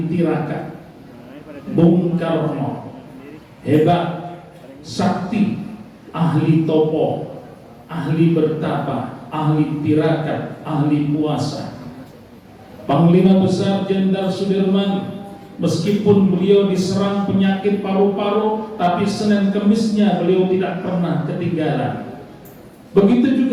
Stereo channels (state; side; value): identical; both; correlation 1.00